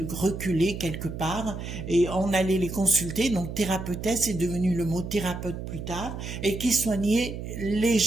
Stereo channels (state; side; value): noise; right; hum, 8 dB below the sound